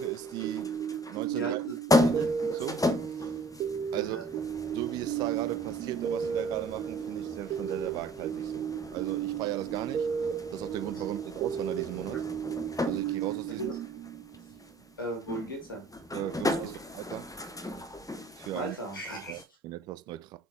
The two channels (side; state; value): left; quieter; 3.4 dB